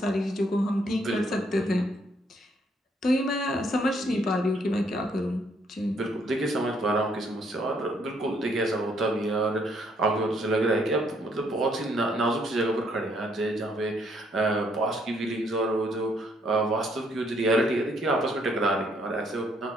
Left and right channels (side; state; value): both; normal; correlation 0.69